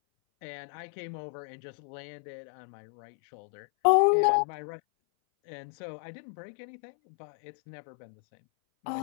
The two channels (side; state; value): right; silent; 57 dB below the other